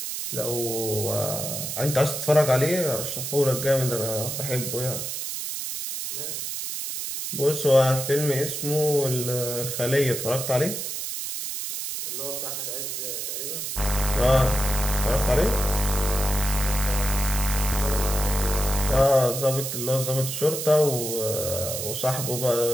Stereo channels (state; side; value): noise; right; hiss, 4 dB below the sound